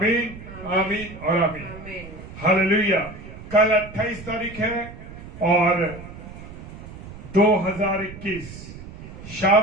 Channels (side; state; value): right; noise; rumble, 14 dB below the sound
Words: आमीन और आमीन। Amen. हालेलुया। कल 28 तारीख है और 2021